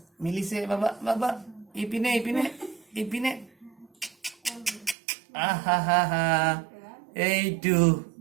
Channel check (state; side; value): drops out; left; at 5.0 s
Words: মিলিছে বাবা বাবা ইপিনে ইপিনে ইপিনে আহা হা হা এইটো